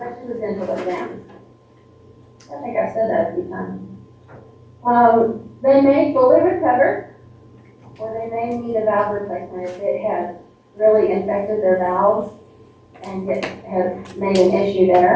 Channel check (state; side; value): identical; both; correlation 1.00